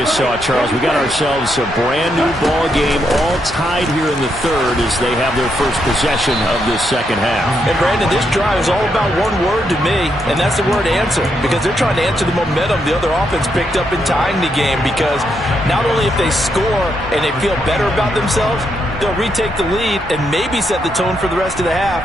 saw, Charles, we got ourselves a brand new ball game, all tied here in the third as they have their first possession of this second half. And Brandon, this drive is all about one word to me, and that's the word answer, because they're trying to answer the momentum the other offense picked up in tying the game, because not only if they score and they feel better about themselves, they'll retake the lead and maybe set the tone for the rest of the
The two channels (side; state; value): both; normal; correlation 0.79